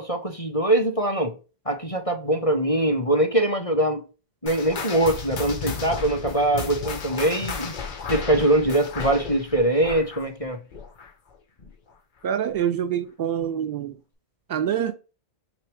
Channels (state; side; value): late; right; 2.2 ms